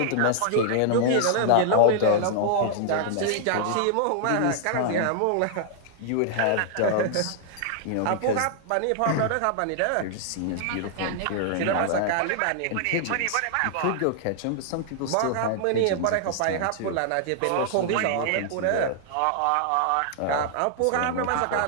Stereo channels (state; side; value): different; both; correlation 0.00